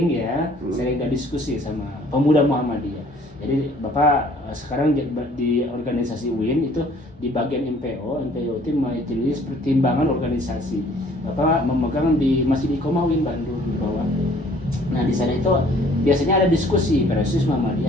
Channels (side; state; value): both; normal; correlation 0.57